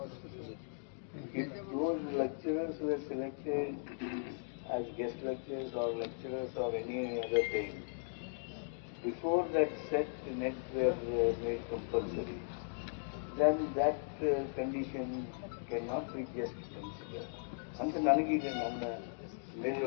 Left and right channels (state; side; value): silent; right; digital silence